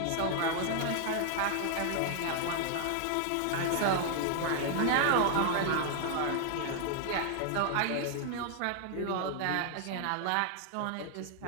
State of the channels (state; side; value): different; both; correlation 0.00